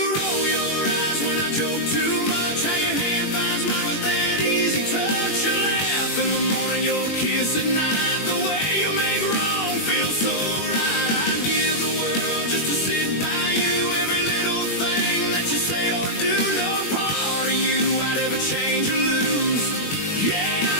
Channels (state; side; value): late; right; 21 ms